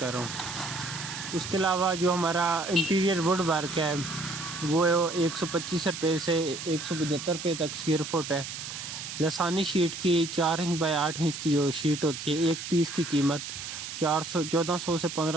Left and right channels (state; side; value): noise; right; hiss, 8 dB below the sound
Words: رہا ہوں۔ اس کے علاوہ جو ہمارا انٹیریئر ووڈ ورک ہے وہ 125 روپے سے 175 روپے تک اسکوائر فٹ ہے۔ لسانی شیٹ کی 4 انچ بائی 8 انچ کی جو شیٹ ہوتی ہے، ایک پیس کی قیمت 1400 سے